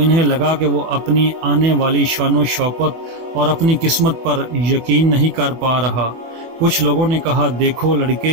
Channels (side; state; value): left; late; 25 ms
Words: لگا کہ وہ اپنی آنے والی شان و شوکت اور اپنی قسمت پر یقین نہیں کر پا رہا۔ کچھ لوگوں نے کہا، دیکھو